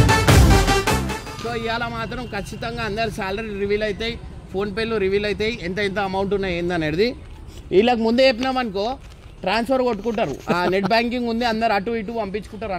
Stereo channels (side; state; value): both; identical; correlation 1.00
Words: సో ఇవాళ మాత్రం ఖచ్చితంగా అందరు శాలరీ రివీల్ అవుతాయి, ఫోన్పేలో రివీల్ అవుతాయి, ఎంత అమౌంట్ ఉన్నాయి ఏందనేది. వీళ్ళకి ముందే చెప్పినామనుకో ట్రాన్స్ఫర్ కొట్టుకుంటారు, నెట్ బ్యాంకింగ్ ఉంది, అందరు అటు ఇటు పంపించుకుంటారు